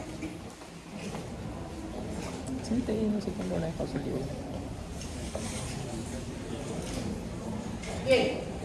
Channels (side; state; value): both; identical; correlation 1.00